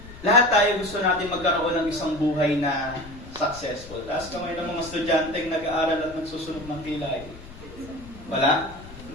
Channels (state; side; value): noise; left; rumble, 17 dB below the sound